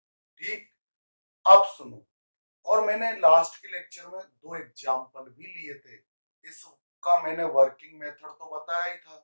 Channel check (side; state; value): both; inverted; correlation -1.00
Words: ठीक, अब सुनो, और मैंने लास्ट के लेक्चर में दो एग्जाम्पल भी लिए थे। इसका मैंने वर्किंग मेथड तो बताया ही था,